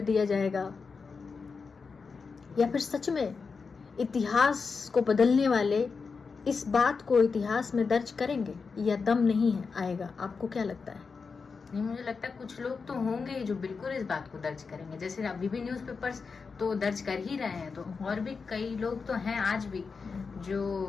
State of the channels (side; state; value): right; quieter; 5.0 dB